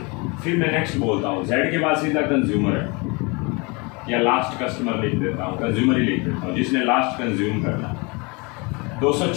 फिर मैं नेक्स्ट बोलता हूँ, जेड के बाद सीधा कंज्यूमर है या लास्ट कस्टमर लिख देता हूँ, कंज्यूमर ही लिख देता हूँ, जिसने लास्ट कंज्यूम करना।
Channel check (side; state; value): right; quieter; 28.8 dB